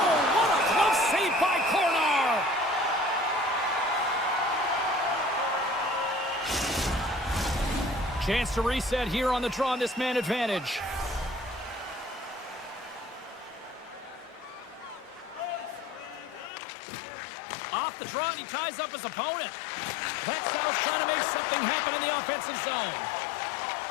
what a close save by Kornar! Chance to reset here on the draw on this man advantage. Off the draw, and he ties up his opponent. Växjö's trying to make something happen in the offensive zone.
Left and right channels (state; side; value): drops out; right; at 16.5 s